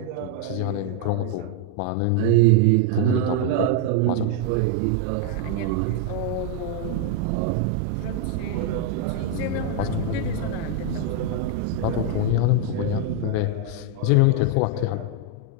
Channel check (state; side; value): different; both; correlation 0.00